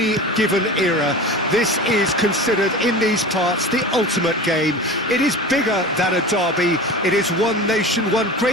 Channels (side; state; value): both; normal; correlation 0.33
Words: given era, this is considered in these parts the ultimate game. It is bigger than a derby. It is one nation, one